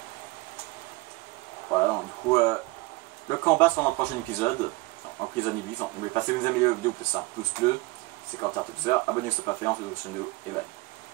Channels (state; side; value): quieter; left; 22.1 dB